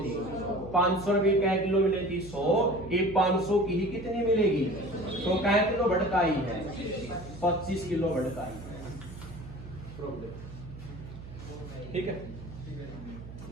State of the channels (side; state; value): right; noise; hum, 13 dB below the sound